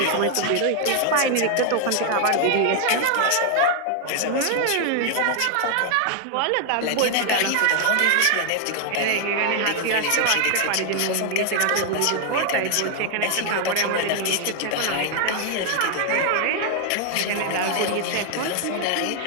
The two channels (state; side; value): different; both; correlation 0.00